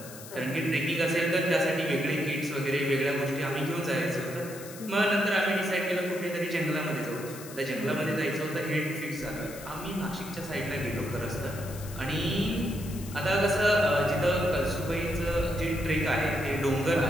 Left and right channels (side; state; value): left; noise; hiss, 15 dB below the sound